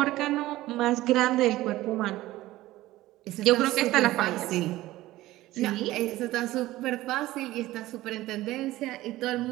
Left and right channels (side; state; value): left; quieter; 16.8 dB